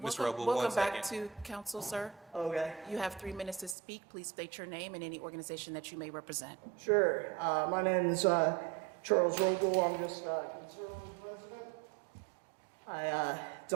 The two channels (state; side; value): drops out; left; at 3.8 s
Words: Mr. Roble, We'll one come back second. to council, sir. Okay. You have 3 minutes to speak. Please state your name and any organization that you may represent. Sure. My name is Charles Roble. I'm just conservative president. I